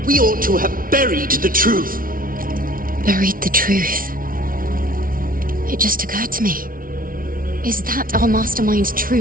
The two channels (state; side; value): late; left; 0.41 ms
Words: We ought to have buried the truth. Buried the truth? It just occurred to me. Is that our mastermind's